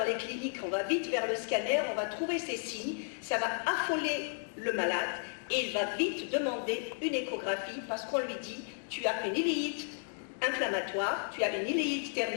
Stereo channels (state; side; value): silent; right; 55 dB below the other